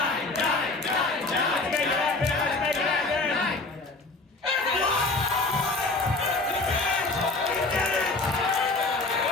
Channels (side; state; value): right; quieter; 3.4 dB